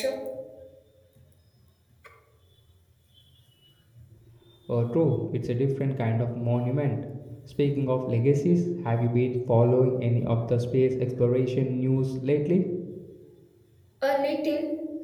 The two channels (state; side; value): identical; both; correlation 1.00